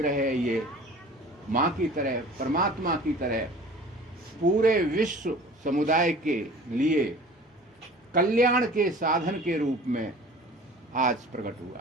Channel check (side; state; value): both; normal; correlation 0.44